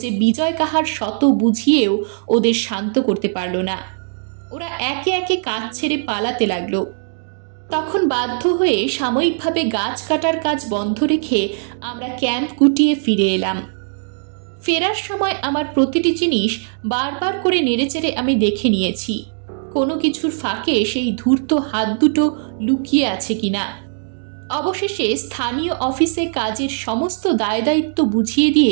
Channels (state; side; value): silent; left; digital silence